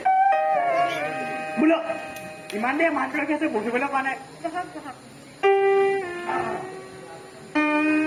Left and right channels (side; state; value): both; identical; correlation 1.00